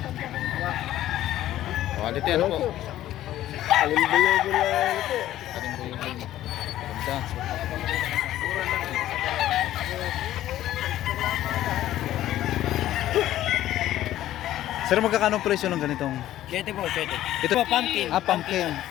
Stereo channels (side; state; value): right; quieter; 13.5 dB